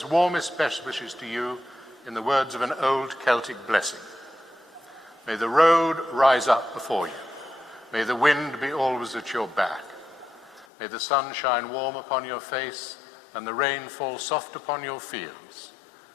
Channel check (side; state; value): right; drops out; at 10.7 s